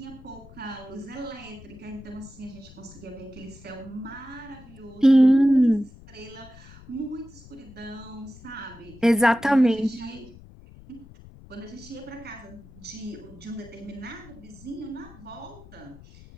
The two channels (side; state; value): left; noise; rumble, 20 dB below the sound